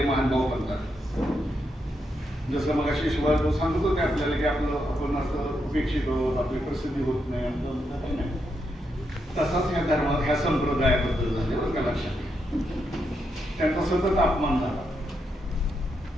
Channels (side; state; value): both; normal; correlation 0.82